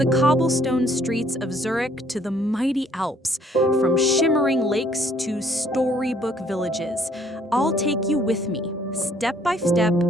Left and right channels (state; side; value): normal; both; correlation 0.63